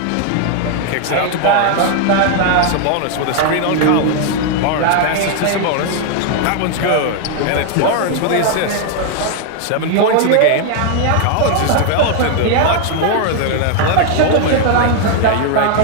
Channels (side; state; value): both; different; correlation 0.00